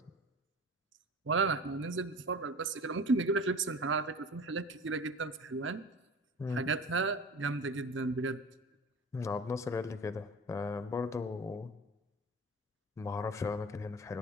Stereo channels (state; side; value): normal; both; correlation 0.37